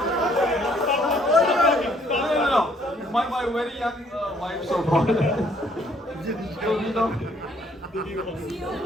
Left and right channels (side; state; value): both; normal; correlation 0.64